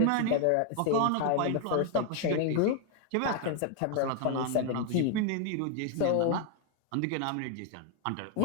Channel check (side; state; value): both; different; correlation 0.01